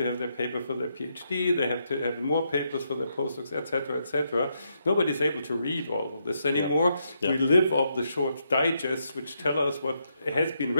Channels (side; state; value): both; inverted; correlation -0.79